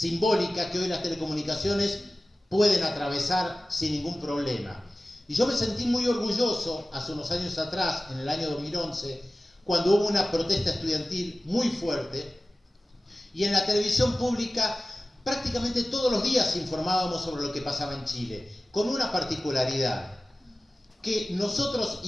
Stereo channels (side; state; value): both; normal; correlation 0.96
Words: que hoy las telecomunicaciones pueden atravesar sin ningún problema. Y yo me sentí muy orgulloso hace unos años atrás, en el año 2011, cuando hubo una protesta estudiantil muy fuerte, y en la televisión pública prácticamente todos los días informábamos sobre lo que pasaba en Chile, con una particularidad, que nosotros